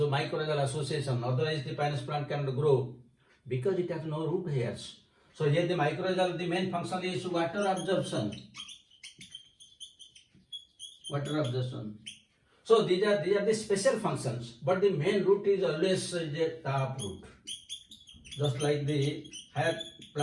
association. Otherwise, the Pinus plant cannot grow because it has no root hairs. So here the mycorrhizal, the main function is water absorption. So these are the special functions, but the main root is always a tap root. Just like the higher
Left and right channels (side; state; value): both; identical; correlation 1.00